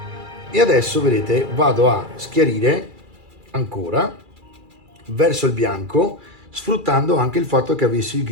E adesso vedete vado a schiarire ancora verso il bianco, sfruttando anche il fatto che avessi il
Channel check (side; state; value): left; late; 2.3 ms